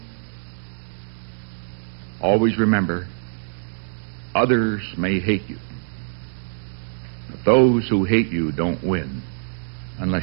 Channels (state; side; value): silent; left; digital silence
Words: Always remember, others may hate you. But those who hate you don't win